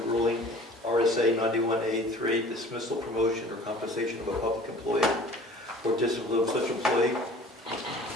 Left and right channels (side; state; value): both; normal; correlation 0.46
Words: RSA 91A3, dismissal, promotion, or compensation of a public employee or discipline of such employee.